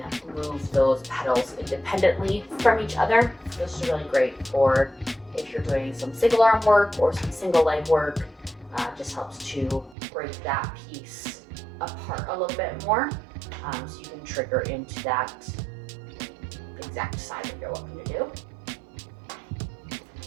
move those pedals independently from each other. This is really great for if you're doing some single arm work or some single leg work. Just helps to break that piece apart a little bit more, so you can trigger into that exact side that you're looking to do.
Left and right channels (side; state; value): left; drops out; at 10.0 s